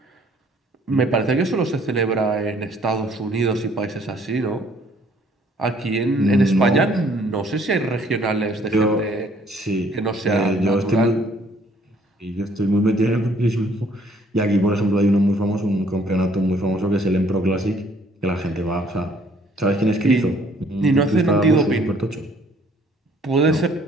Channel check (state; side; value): normal; both; correlation 0.61